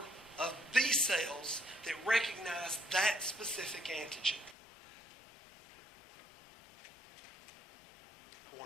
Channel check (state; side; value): drops out; right; at 4.5 s